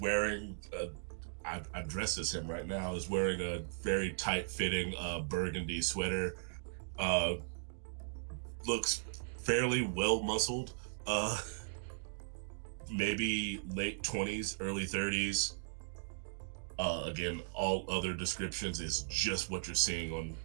I'm dressed as him right now. Is wearing a very tight-fitting burgundy sweater. Looks fairly well muscled. Maybe late 20s, early 30s. Again, all other descriptions is just what you're seeing on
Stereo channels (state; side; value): silent; left; digital silence